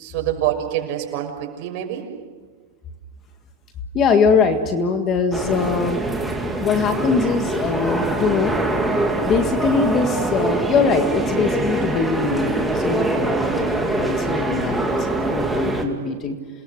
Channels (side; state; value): both; normal; correlation 0.46